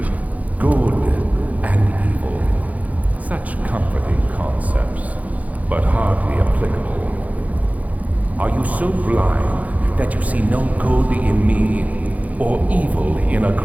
Good and evil. Such comforting concepts, but hardly applicable. Are you so blind that you see no good in me or evil in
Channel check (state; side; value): late; left; 0.073 ms